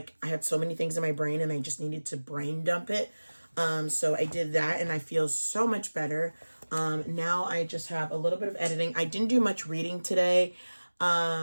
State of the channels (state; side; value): inverted; both; correlation -1.00